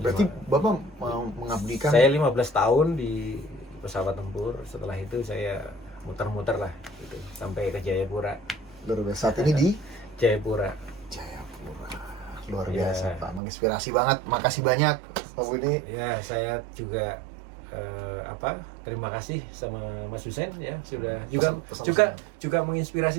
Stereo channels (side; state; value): left; drops out; at 13.4 s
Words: Bapak mau mengabdikan. Saya 15 tahun di pesawat tempur. Setelah itu saya muter-muter lah gitu sampai ke Jayapura. Luar biasa. Saat ini di Jayapura. Luar biasa Pak, menginspirasi banget. Makasih banyak Pak Budi. Ya, saya juga terima kasih sama Mas Hussein ya, sudah juga menginspirasi